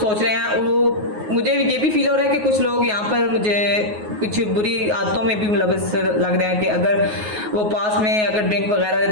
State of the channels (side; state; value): left; late; 9.4 ms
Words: रहे हैं। वो मुझे ये भी फील हो रहा है कि कुछ लोग यहाँ पर मुझे कुछ बुरी आदतों में भी मुलव्वस लग रहे हैं, कि अगर वो पास में अगर ड्रिंक